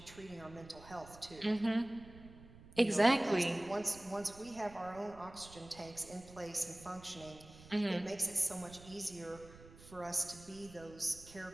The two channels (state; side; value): noise; right; rumble, 19 dB below the sound